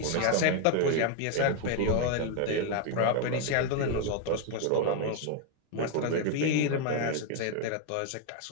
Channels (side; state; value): both; different; correlation 0.01